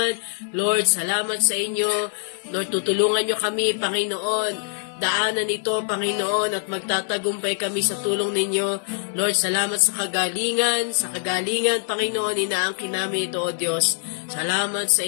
Lord, salamat sa inyo. Lord, tutulungan nyo kami, Panginoon. Daanan ito, Panginoon, at magtatagumpay kami sa tulong ninyo. Lord, salamat sa kagalingan, Panginoon, inaangkin namin ito, O Diyos. Salamat sa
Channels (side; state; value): right; silent; 63 dB below the other